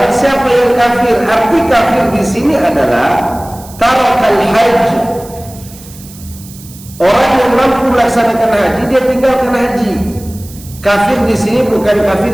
siapa yang kafir. Arti kafir di sini adalah tarakal haji. Orang yang mampu melaksanakan haji, dia tinggalkan haji. Kafir di sini bukan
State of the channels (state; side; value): noise; right; hiss, 20 dB below the sound